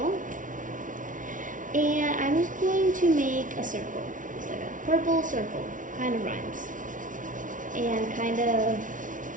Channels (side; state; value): left; late; 0.38 ms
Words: and I'm just going to make a circle. It's like a purple circle, kind of rhymes. And kind of